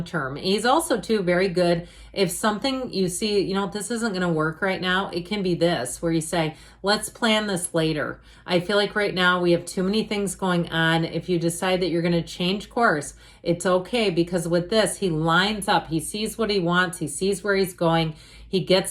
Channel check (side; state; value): both; identical; correlation 1.00